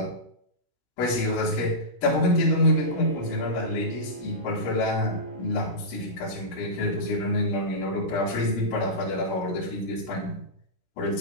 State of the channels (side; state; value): right; late; 17 ms